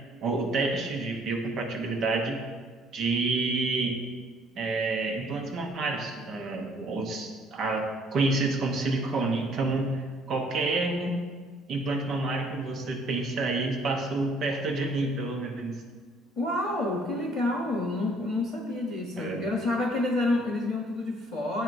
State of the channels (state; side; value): normal; both; correlation 0.61